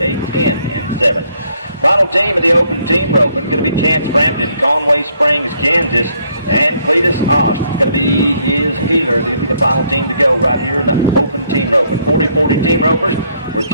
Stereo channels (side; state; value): both; inverted; correlation -0.69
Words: a 10 and 7. Final team of the open team roping going to be Chance Frampton, Conway Springs, Kansas, and Cletus Ost. It's going to be his healer. They'll be the final team to go right here in the open team roping. 40-40 team ropers. We're